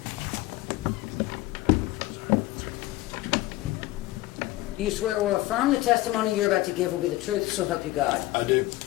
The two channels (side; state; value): right; quieter; 17.7 dB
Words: You swear or affirm the testimony you're about to give will be the truth, so help you God. I do.